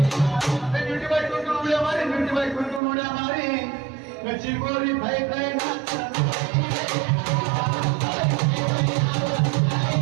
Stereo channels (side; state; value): left; drops out; at 2.8 s